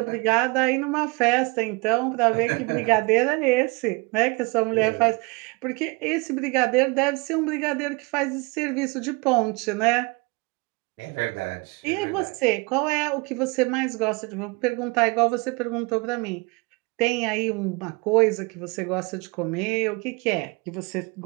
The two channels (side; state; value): left; quieter; 28.4 dB